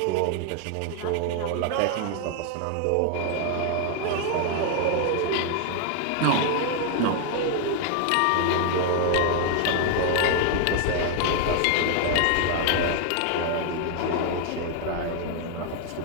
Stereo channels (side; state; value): both; different; correlation 0.00